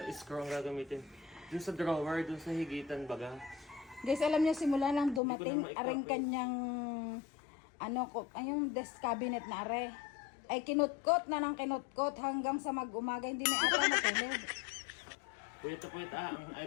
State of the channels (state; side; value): drops out; right; at 5.2 s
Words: screw ang gagamitin. Dun sa drawer, dun sa higitan baga. Guys, alam niyo simula lang dumating Hindi ko na aring kanyang yung desk cabinet na are. Ay kinutkot na ng kinutkot hanggang sa mag-umaga hindi na ata natulog. Puyat na puyat ay